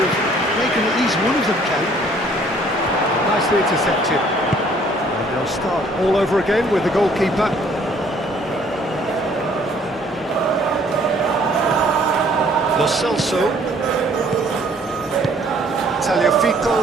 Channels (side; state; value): both; normal; correlation 0.59